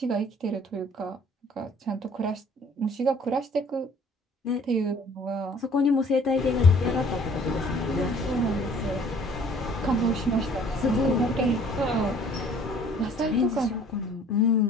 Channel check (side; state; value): both; normal; correlation 0.55